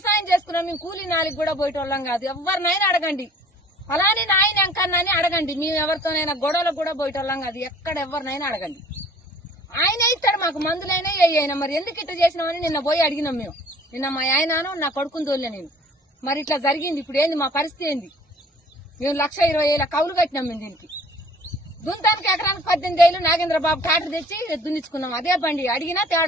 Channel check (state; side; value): normal; both; correlation 0.52